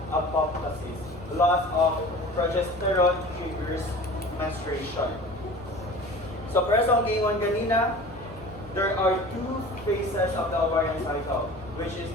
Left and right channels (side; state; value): both; normal; correlation 0.40